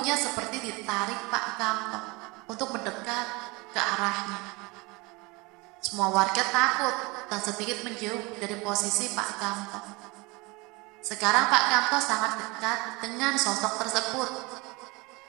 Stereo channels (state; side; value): quieter; left; 25.5 dB